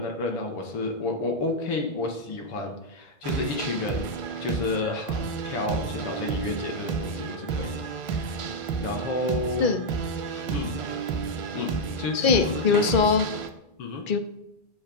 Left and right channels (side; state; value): right; late; 2.3 ms